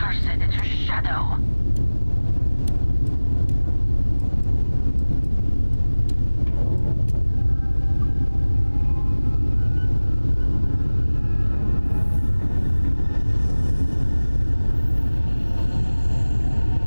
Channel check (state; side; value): inverted; both; correlation -1.00